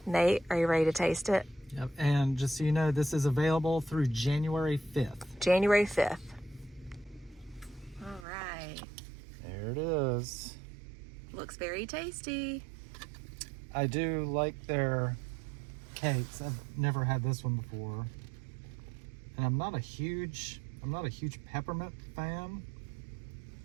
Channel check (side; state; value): left; drops out; at 8.2 s